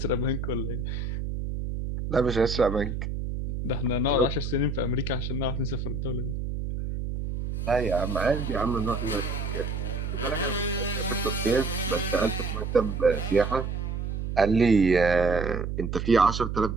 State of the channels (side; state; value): right; noise; hum, 4 dB below the sound